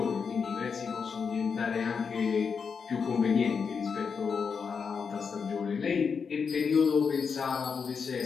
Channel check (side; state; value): right; quieter; 5.9 dB